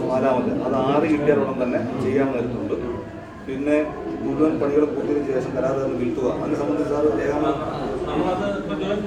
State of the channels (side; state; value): both; identical; correlation 1.00